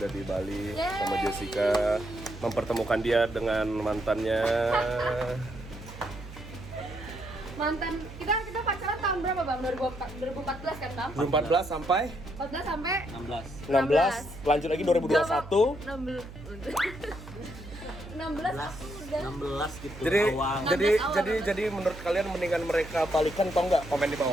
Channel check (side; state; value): right; noise; hum, 14 dB below the sound